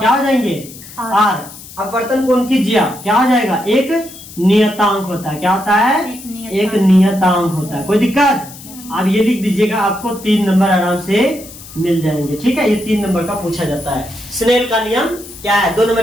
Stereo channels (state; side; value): noise; left; hiss, 17 dB below the sound